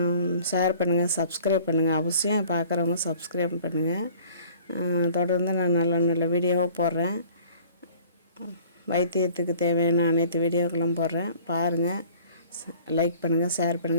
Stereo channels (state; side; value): inverted; both; correlation -0.51